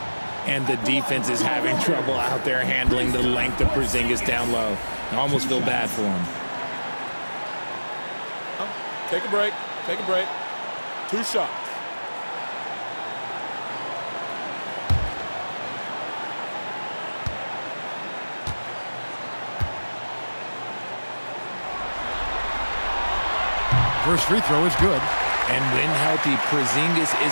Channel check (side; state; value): both; inverted; correlation -1.00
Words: And the defense is having trouble out there handling the length of Porzingis down low. I almost feel bad for him. Take a break. Take a break. 2 shots. First free throw is good. And when healthy, Porzingis